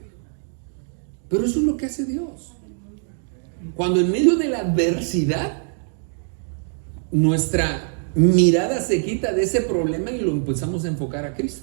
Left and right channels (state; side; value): silent; left; 60 dB below the other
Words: Pero eso es lo que hace Dios. Cuando en medio de la adversidad nuestra mirada se quita de ese problema y lo empezamos a enfocar a